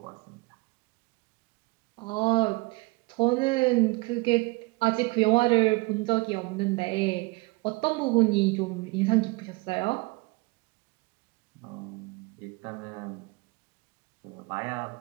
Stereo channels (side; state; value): left; quieter; 25.3 dB